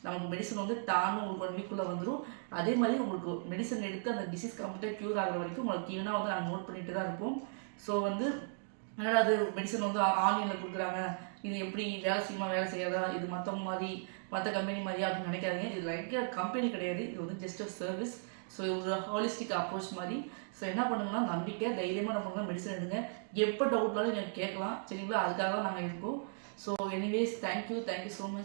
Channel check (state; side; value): silent; left; digital silence